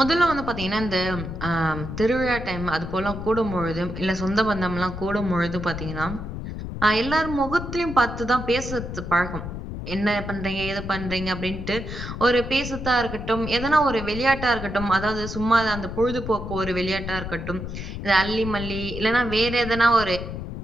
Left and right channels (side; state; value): left; noise; rumble, 7 dB below the sound